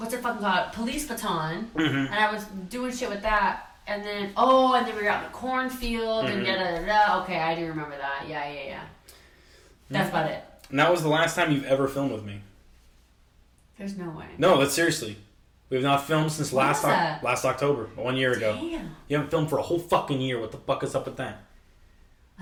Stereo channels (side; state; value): both; identical; correlation 1.00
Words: it fucking called? Police baton. Mm-hmm. And I was doing shit with that. And then we were out in the cornfield and da-da-da-da. Okay, I do remember that. Yeah. That's about it. And that was the last time you've ever filmed with me. There's no way. No, that's seriously. We have not filmed since last October, 1 year ago. Damn. You haven't filmed for a whole fucking year. What the fuck is up with that?